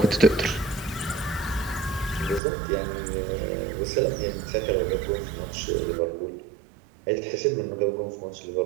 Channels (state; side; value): drops out; left; at 2.4 s